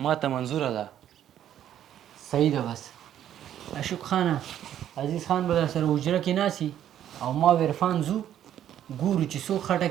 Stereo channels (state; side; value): quieter; left; 10.8 dB